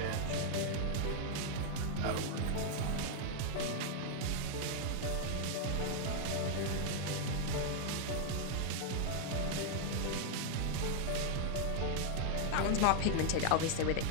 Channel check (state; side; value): different; both; correlation -0.01